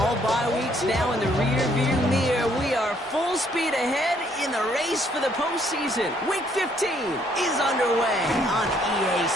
bye weeks now in the rear-view mirror. We are full speed ahead in the race for the postseason. Week 15 is underway on EA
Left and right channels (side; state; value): both; normal; correlation 0.67